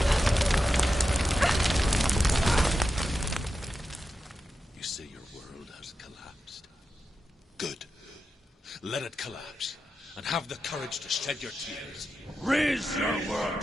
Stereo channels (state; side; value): normal; both; correlation 0.90